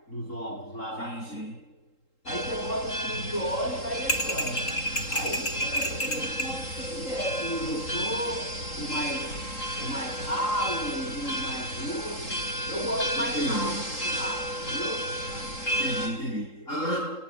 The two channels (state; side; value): late; right; 3.8 ms